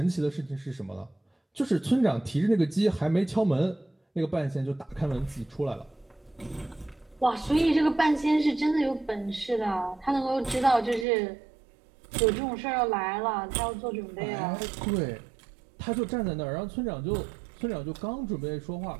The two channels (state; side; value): drops out; left; at 11.1 s